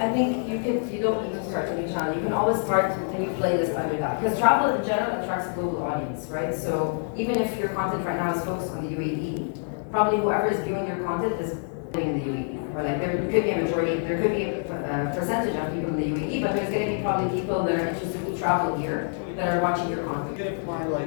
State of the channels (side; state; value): right; silent; 56 dB below the other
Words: think you don't need to start a new channel. You can always start a new playlist under that. Because travel in general attracts a global audience, right? So even if your content right now is focused on the UAE, probably whoever is viewing your content is living in the UAE. Or like there could be a majority, there could be a percentage of people in the UAE, but there's going to be probably people that are interested to travel here that are watching your content. Even if my